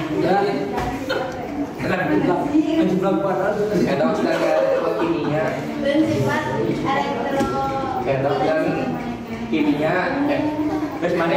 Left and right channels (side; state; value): both; identical; correlation 1.00